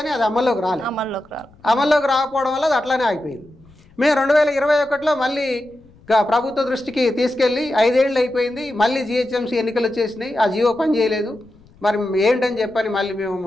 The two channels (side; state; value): left; noise; rumble, 27 dB below the sound